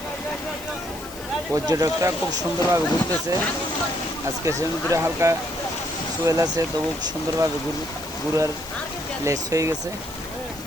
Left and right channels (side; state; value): left; noise; hiss, 17 dB below the sound